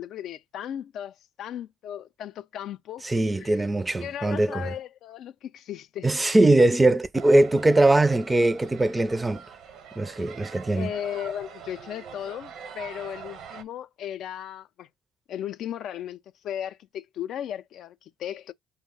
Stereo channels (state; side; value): normal; both; correlation 0.93